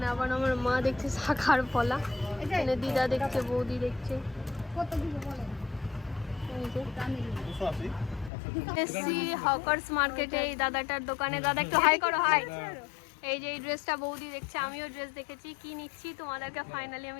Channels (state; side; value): drops out; right; at 8.3 s